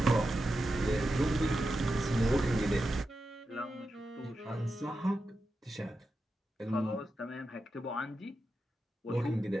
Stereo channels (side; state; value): both; normal; correlation 0.90